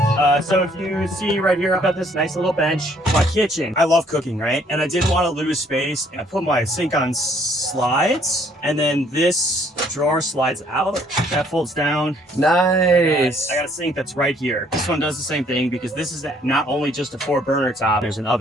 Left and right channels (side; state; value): both; normal; correlation 0.63